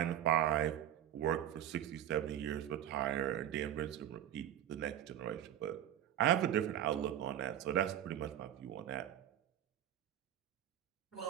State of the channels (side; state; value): left; quieter; 11.2 dB